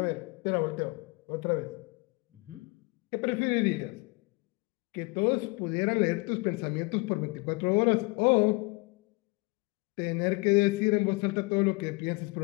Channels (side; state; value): right; quieter; 26.4 dB